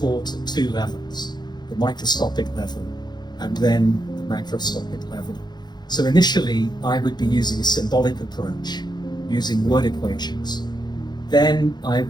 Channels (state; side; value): late; right; 0.21 ms